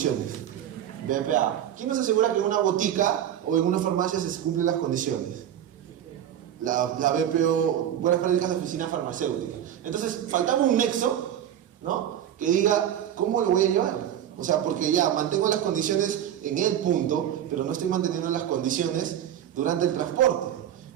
BPA. ¿Quién nos asegura que en una botica o en una farmacia se cumplen las condiciones? La BPO, buenas prácticas de oficina farmacéutica. Entonces, faltaba un nexo, ¿no? Que diga, ¿cómo lo voy a llevar? O sea, porque ya mantengo las condiciones en el punto, pero no estoy manteniendo las condiciones durante el transporte.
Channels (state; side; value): quieter; left; 10.5 dB